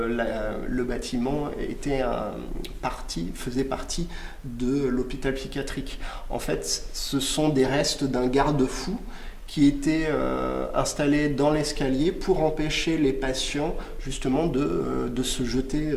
bâtiment faisait partie de l'hôpital psychiatrique. En fait, ce sont des restes d'un garde-fou qui était installé dans l'escalier pour empêcher les patients justement de se jeter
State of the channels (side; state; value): both; identical; correlation 1.00